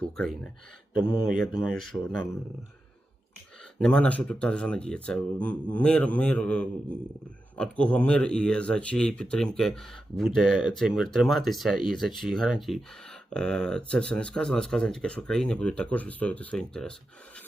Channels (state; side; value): normal; both; correlation 0.90